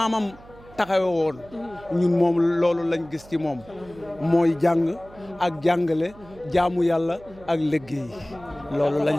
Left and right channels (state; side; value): noise; right; hum, 22 dB below the sound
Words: taxawe woon ñun moom loolu lañ gis ci moom mooy jàng ak jàngale jaamu yàlla ak liggéey loolu